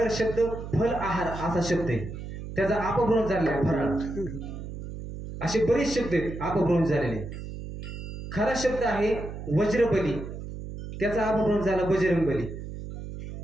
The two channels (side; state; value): right; noise; hum, 9 dB below the sound